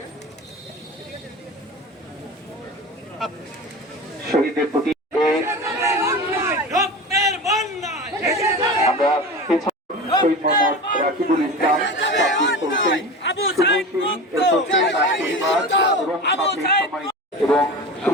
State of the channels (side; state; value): both; normal; correlation 0.30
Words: শহীদদের প্রতি আমরা শহীদ মোহাম্মদ রাকিবুল ইসলাম, এবং